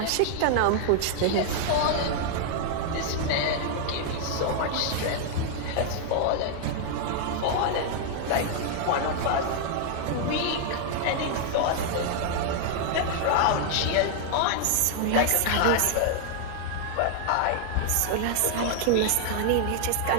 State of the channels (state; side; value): different; both; correlation 0.00